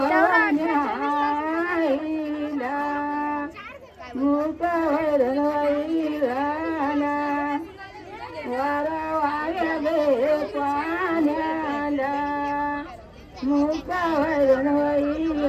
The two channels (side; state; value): both; identical; correlation 1.00